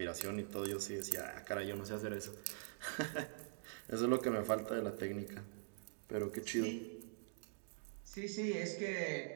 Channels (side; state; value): left; silent; digital silence